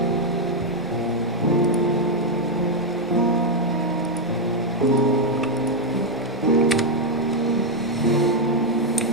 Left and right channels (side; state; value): both; normal; correlation 0.01